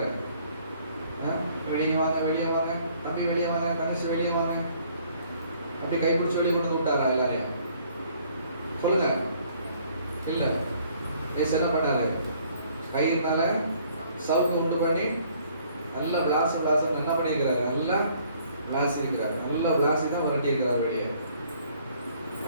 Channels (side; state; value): both; inverted; correlation -0.61